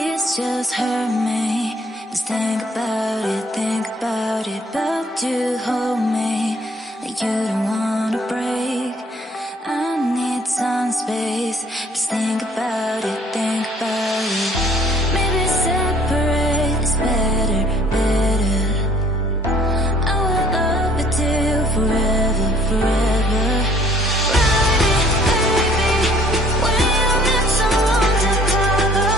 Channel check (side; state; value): both; normal; correlation 0.58